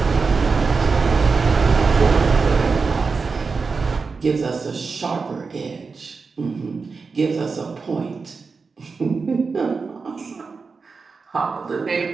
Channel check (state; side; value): quieter; left; 4.7 dB